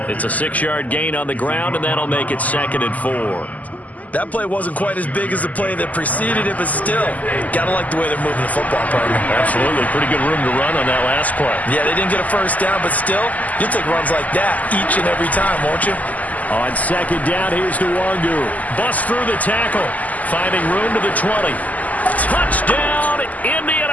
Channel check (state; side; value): late; right; 0.077 ms